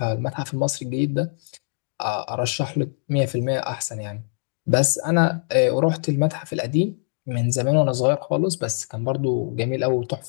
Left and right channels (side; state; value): right; silent; digital silence